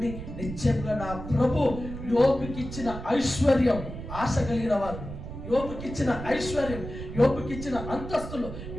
నిశ్చయంగా నా ప్రభు యోబుకిచ్చిన ఐశ్వర్యం, ఆశ కలిగిన వారు యోబుకిచ్చిన ఐశ్వర్యం, యోబుకిచ్చిన అంతస్తులు,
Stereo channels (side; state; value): right; noise; rumble, 9 dB below the sound